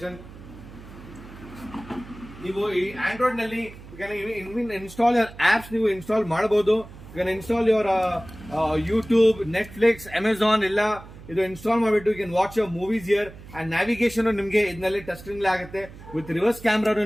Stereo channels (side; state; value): right; noise; hum, 17 dB below the sound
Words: ನೀವು ಈ ಆಂಡ್ರಾಯ್ಡ್ ನಲ್ಲಿ ಇನ್ಸ್ಟಾಲ್ ಆಪ್ಸ್ ನೀವು ಇನ್ಸ್ಟಾಲ್ ಮಾಡಬಹುದು. You can install your YouTube, Netflix, Amazon ಎಲ್ಲ ಇದು ಇನ್ಸ್ಟಾಲ್ ಮಾಡಿಬಿಟ್ಟು you can watch your movies here. And navigation ನಿಮಗೆ ಇದರಲ್ಲಿ ಟಚ್ ಸ್ಕ್ರೀನ್ ಆಗುತ್ತೆ. ವಿತ್ ರಿವರ್ಸ್ ಕ್ಯಾಮ್ರಾ